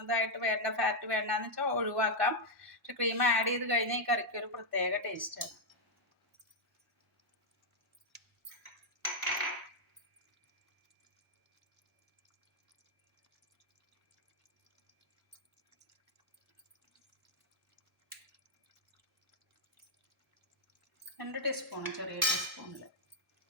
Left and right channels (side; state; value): both; normal; correlation -0.01